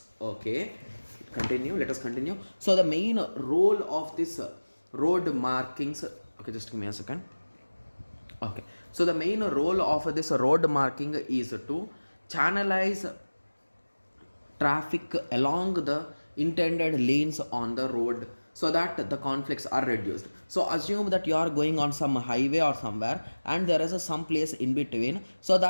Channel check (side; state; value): both; inverted; correlation -1.00